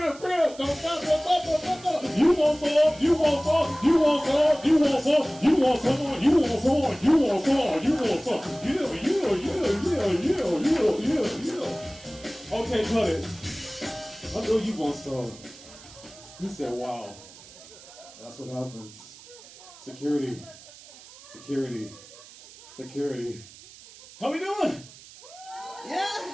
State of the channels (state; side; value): noise; right; hiss, 20 dB below the sound